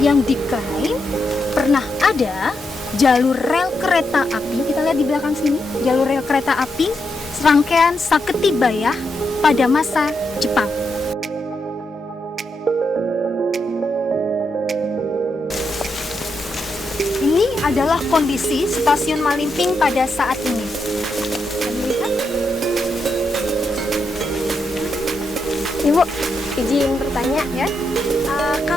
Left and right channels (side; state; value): both; normal; correlation 0.83